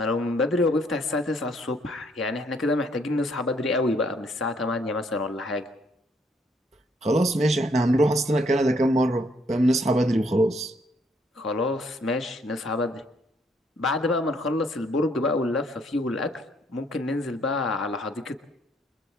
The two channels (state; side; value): normal; both; correlation 0.68